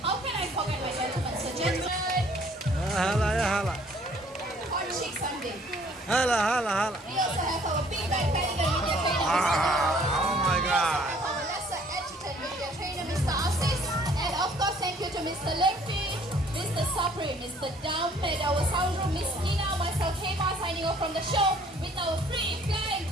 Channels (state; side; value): normal; both; correlation 0.58